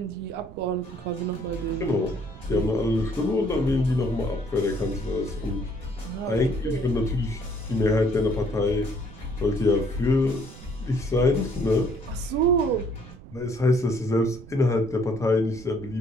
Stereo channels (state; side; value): noise; right; rumble, 17 dB below the sound